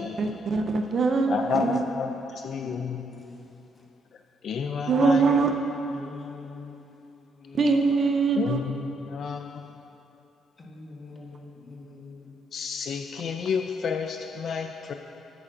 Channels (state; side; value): normal; both; correlation 0.73